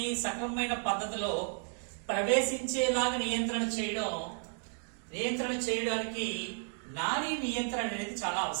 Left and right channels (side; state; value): left; silent; 56 dB below the other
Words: సక్రమమైన పద్ధతిలో ప్రవేశించేలాగా నియంత్రణ చేయడానికి నాడీ నియంత్రణ అనేది చాలా